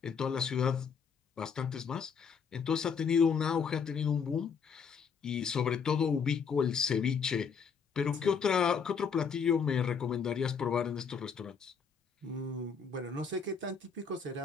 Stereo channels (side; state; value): right; quieter; 6.1 dB